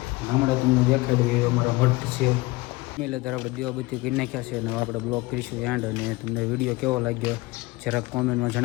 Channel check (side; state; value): right; quieter; 22.2 dB